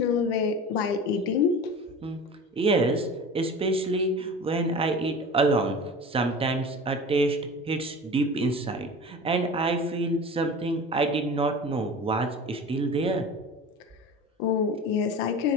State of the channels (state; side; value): normal; both; correlation 0.35